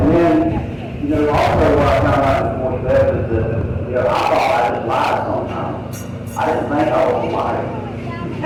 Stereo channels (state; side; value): identical; both; correlation 1.00